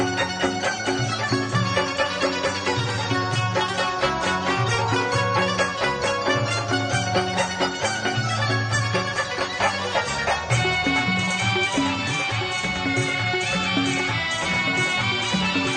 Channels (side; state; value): both; identical; correlation 1.00